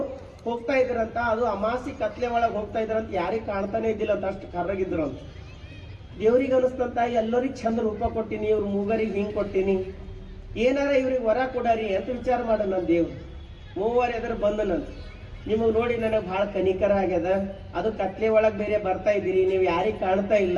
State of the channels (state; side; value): identical; both; correlation 1.00